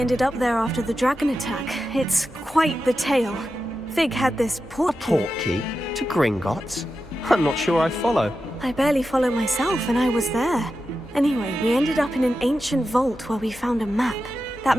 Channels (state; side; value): normal; both; correlation 0.90